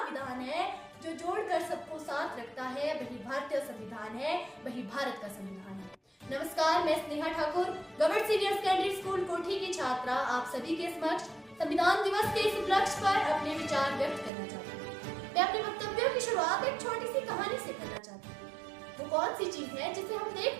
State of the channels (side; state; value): left; drops out; at 14.3 s